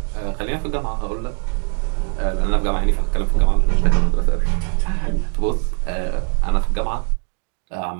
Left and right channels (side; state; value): left; quieter; 39.6 dB